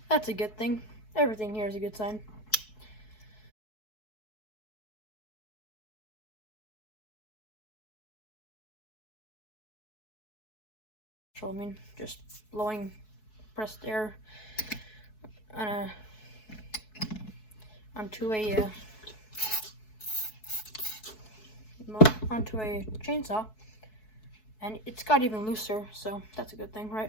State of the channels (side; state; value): right; late; 4.7 ms